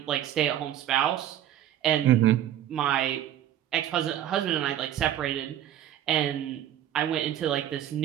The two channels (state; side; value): quieter; left; 11.5 dB